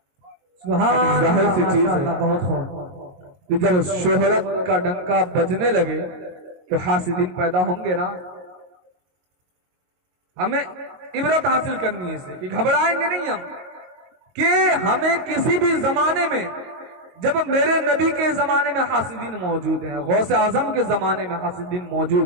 سبحان ظاہر سی چیز ہے بہت خوب کہ جب شہرت کا ڈنکا بجنے لگے تو حاسدین پیدا ہوں گے نا۔ ہمیں عبرت حاصل کرنی ہے اسے کہ گھبرائیں گے نہیں ہم، کہ ہمیں کسی بھی زمانے میں، جب میرے نبی کے زمانے میں حاسدین موجود ہیں، غوث اعظم کے زمانے میں حاسدین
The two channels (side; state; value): left; late; 22 ms